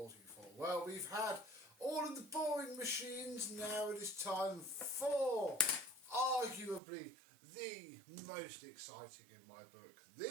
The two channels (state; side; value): drops out; left; at 6.8 s